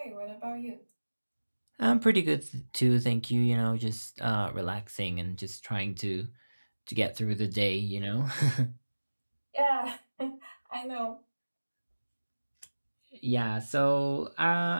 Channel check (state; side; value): inverted; both; correlation -1.00